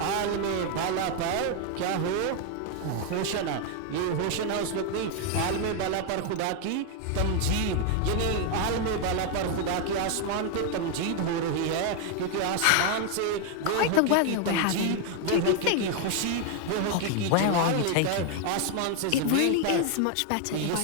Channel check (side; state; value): both; different; correlation 0.01